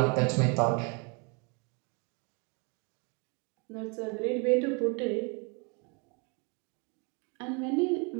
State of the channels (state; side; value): quieter; left; 31.8 dB